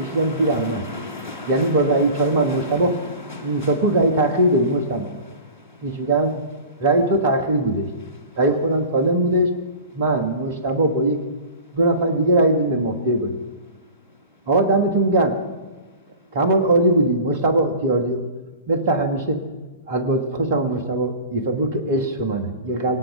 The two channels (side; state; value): both; inverted; correlation -0.38